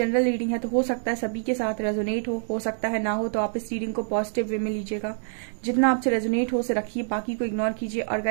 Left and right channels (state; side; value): silent; left; digital silence